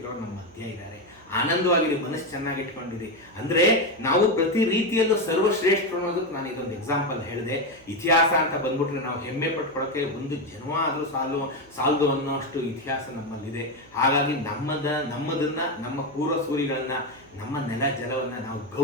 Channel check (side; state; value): right; noise; hum, 27 dB below the sound